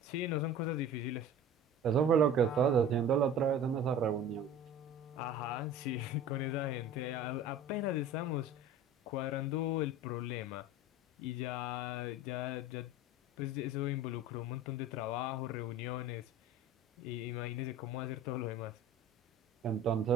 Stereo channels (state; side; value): normal; both; correlation 0.39